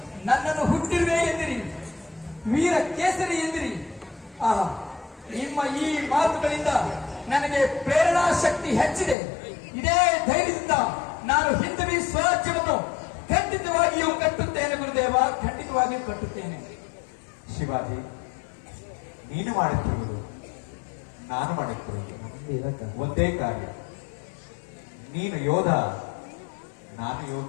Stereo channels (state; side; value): drops out; right; at 9.2 s